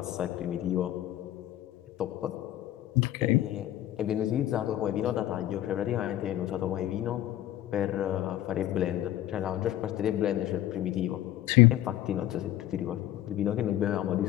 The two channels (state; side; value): quieter; right; 13.5 dB